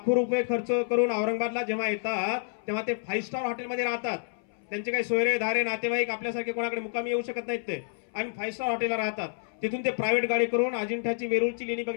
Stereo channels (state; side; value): silent; right; 59 dB below the other